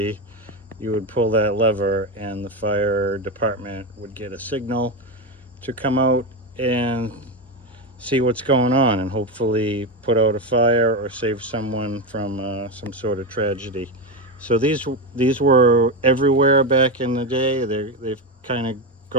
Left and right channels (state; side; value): normal; both; correlation 0.13